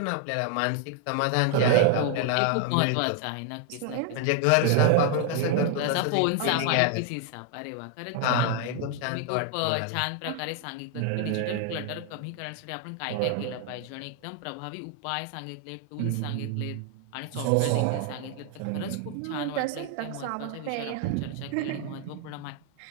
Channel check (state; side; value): different; both; correlation 0.00